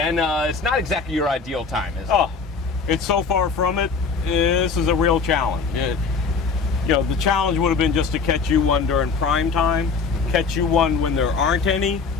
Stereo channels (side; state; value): right; quieter; 5.0 dB